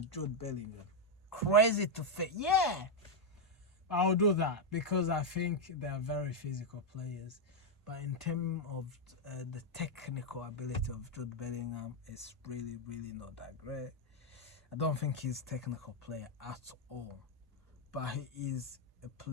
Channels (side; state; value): both; normal; correlation 0.01